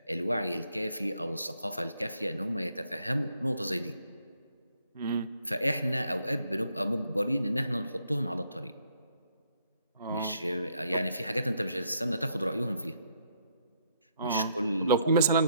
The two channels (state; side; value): inverted; both; correlation -0.71